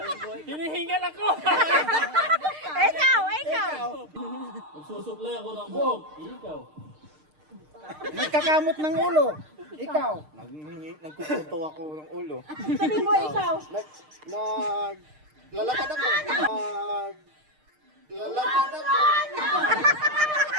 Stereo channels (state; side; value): late; left; 6.6 ms